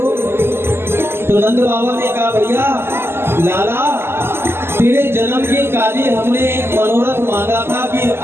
तो नंद बाबा ने कहा, भैया लाला तेरे जन्म के काजे हमने एक मनोरथ मांगा था कि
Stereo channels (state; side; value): late; left; 0.12 ms